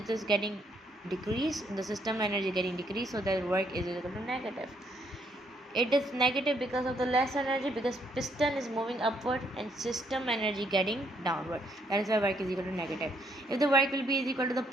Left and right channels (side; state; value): both; normal; correlation 0.71